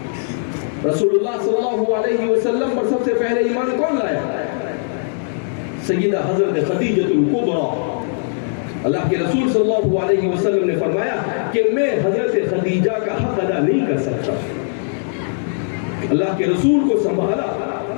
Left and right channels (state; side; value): silent; right; digital silence